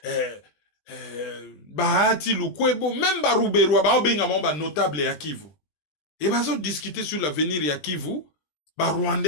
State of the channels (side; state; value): right; late; 20 ms